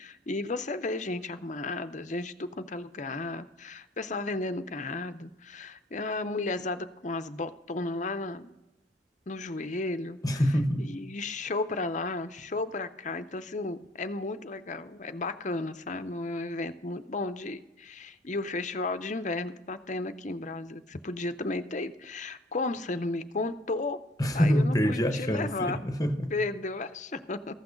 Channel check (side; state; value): both; normal; correlation 0.55